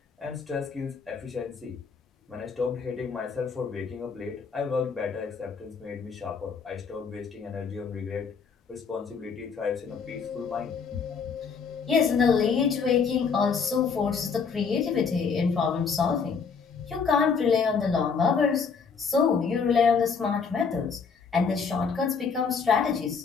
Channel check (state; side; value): quieter; right; 5.7 dB